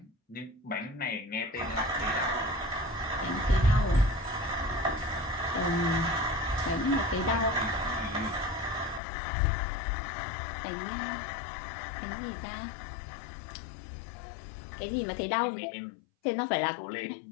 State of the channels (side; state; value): right; drops out; at 9.0 s